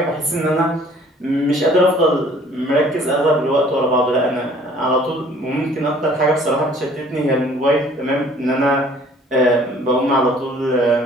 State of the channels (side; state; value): both; normal; correlation 0.54